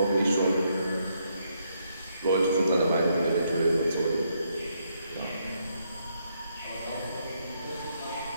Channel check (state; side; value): inverted; both; correlation -0.76